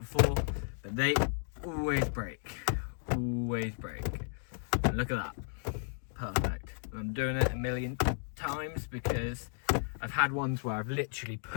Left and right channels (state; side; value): silent; right; digital silence